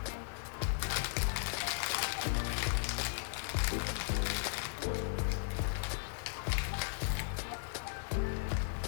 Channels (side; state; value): right; silent; digital silence